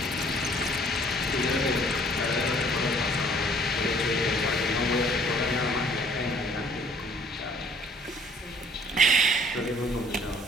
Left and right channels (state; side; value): normal; both; correlation 0.58